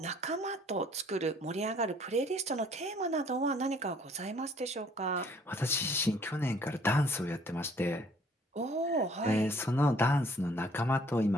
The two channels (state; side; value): normal; both; correlation 0.59